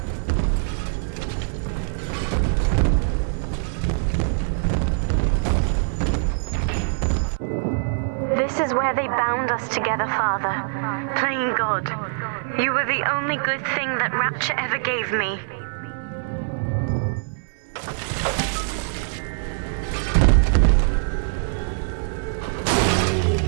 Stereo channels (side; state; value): left; silent; 60 dB below the other